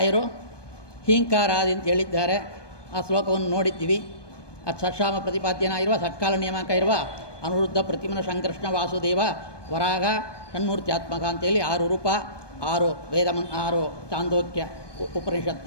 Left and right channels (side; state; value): right; late; 1.2 ms